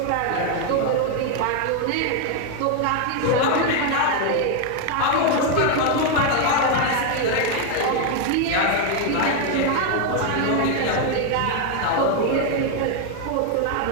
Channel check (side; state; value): both; different; correlation 0.01